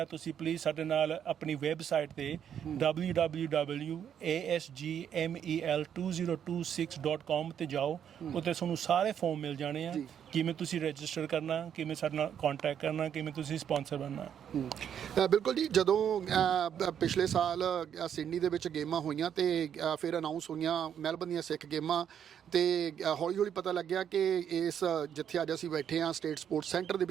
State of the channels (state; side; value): quieter; left; 8.9 dB